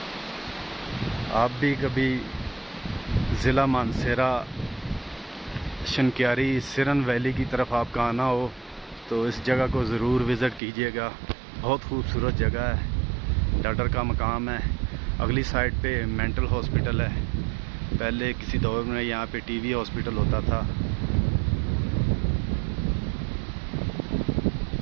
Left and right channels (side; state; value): left; drops out; at 10.6 s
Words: आप भी कभी ज़िला मानसेरा शनक्यारी सिरन वैली की तरफ आपका आना हो तो इस जगह को ज़रूर विज़िट कीजिएगा। बहुत खूबसूरत जगह है। डडर का मकाम है। अगली साइड पे मेंटल हॉस्पिटल है। पहले किसी दौर में यहाँ पे टीबी हॉस्पिटल होता था।